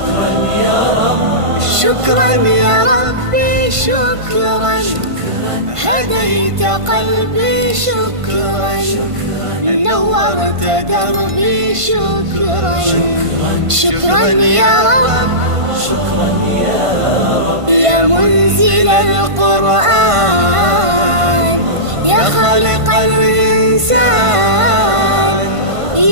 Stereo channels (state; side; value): late; left; 1.5 ms